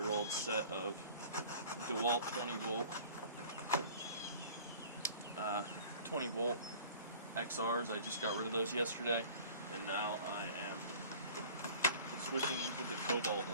set of DeWalt 20-volt XRs. I just got rid of those yesterday, and now I am switching into the Cobalt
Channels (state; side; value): inverted; both; correlation -0.46